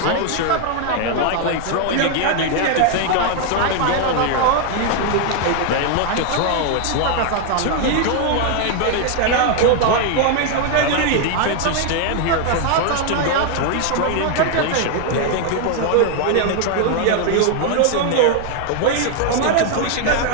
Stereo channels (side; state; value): both; different; correlation 0.00